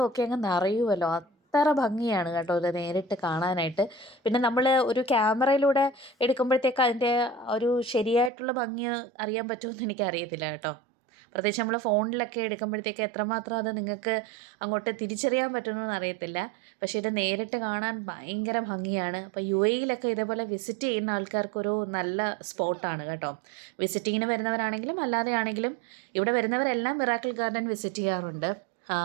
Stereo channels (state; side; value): drops out; left; at 8.3 s